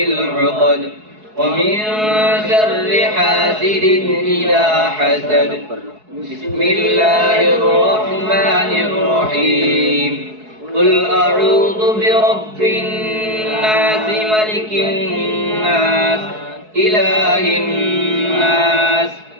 العقد ومن شر حاسد إذا حسد. بسم الله الرحمن الرحيم. قل أعوذ برب الناس ملك الناس إله الناس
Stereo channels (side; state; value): left; late; 4.7 ms